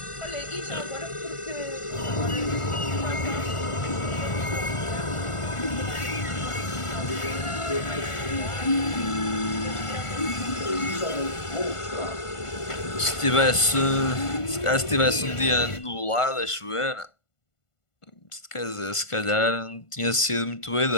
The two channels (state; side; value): late; right; 1.5 ms